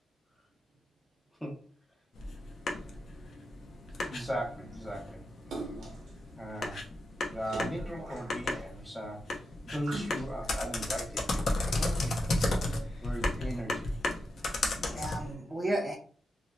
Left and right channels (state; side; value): normal; both; correlation 0.87